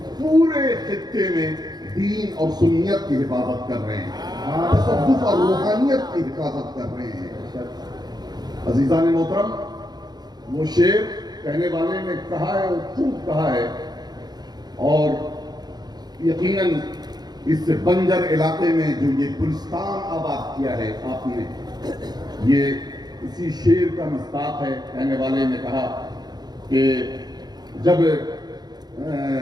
پورے خطے میں دین اور سنت کی حفاظت کر رہے ہیں، تصوف اور روحانیت کی حفاظت کر رہے ہیں۔ عزیزان محترم، وہ شعر کہنے والے نے کہا ہے، وہ خوب کہا ہے، اور یقیناً اس بنجر علاقے میں جو یہ گلستان آباد کیا ہے آپ نے، یہ اسی شعر کا مصداق ہے۔ کہنے والے نے کہا کہ جب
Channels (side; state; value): left; late; 0.20 ms